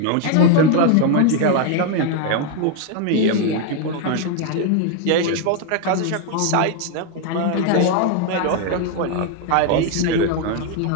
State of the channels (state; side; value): different; both; correlation 0.01